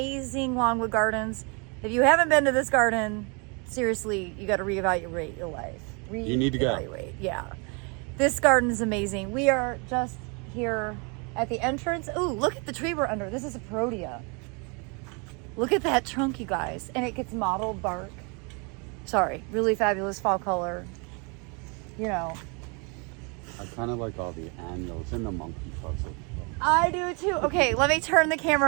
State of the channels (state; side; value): quieter; left; 33.0 dB